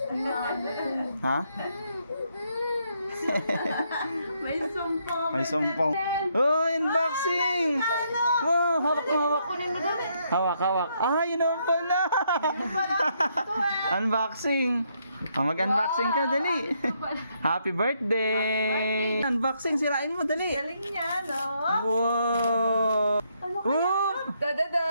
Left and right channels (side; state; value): both; inverted; correlation -0.74